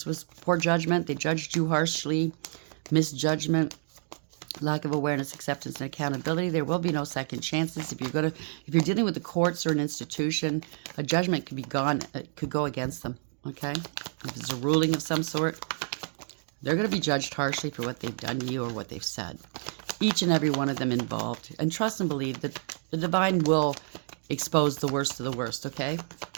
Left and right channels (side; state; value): left; silent; digital silence